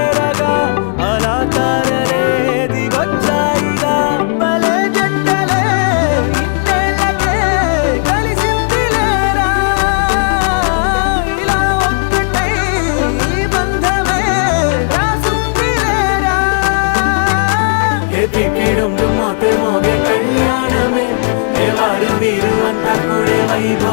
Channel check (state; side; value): silent; right; digital silence